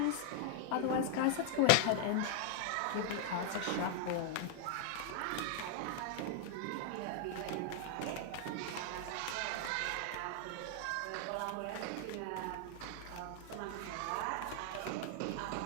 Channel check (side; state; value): both; different; correlation 0.00